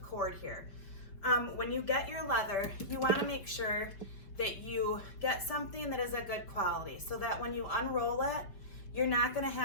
cord here. When you get your leather, you want to make sure that you get something that is a good quality so that when you unroll it, you're not going to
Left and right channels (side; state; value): right; late; 5.3 ms